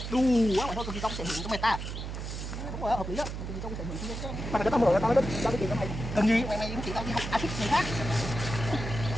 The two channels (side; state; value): right; noise; hum, 6 dB below the sound